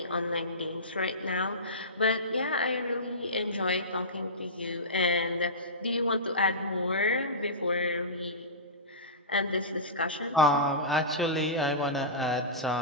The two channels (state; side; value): normal; both; correlation -0.20